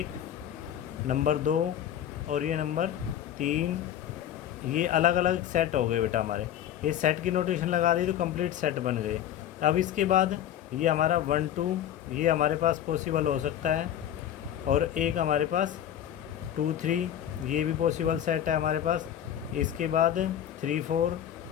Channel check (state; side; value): quieter; right; 10.6 dB